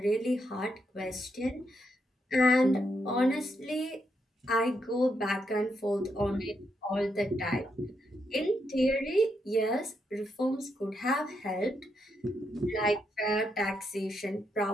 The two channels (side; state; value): both; normal; correlation 0.80